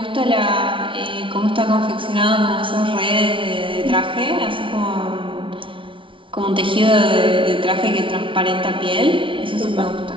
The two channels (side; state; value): left; late; 0.25 ms